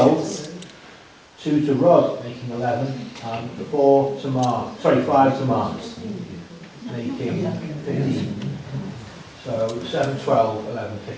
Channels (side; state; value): both; identical; correlation 1.00